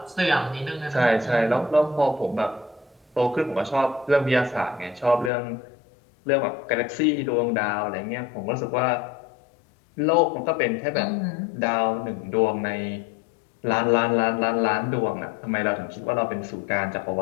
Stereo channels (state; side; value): drops out; right; at 5.3 s